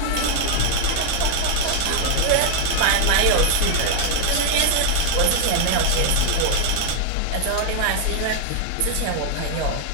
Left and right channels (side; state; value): both; different; correlation 0.00